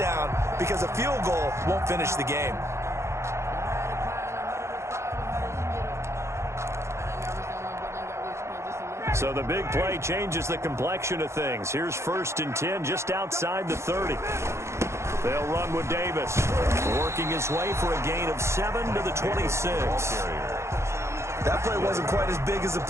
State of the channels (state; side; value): late; left; 0.13 ms